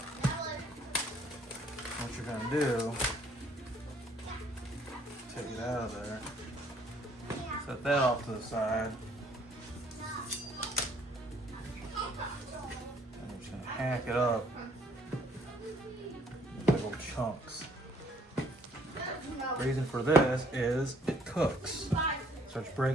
What you're gonna do? Take it out of there. Set that off to the side. And we're just gonna hack it up in little chunks. The reason for this is it cooks. Starts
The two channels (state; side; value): normal; both; correlation 0.62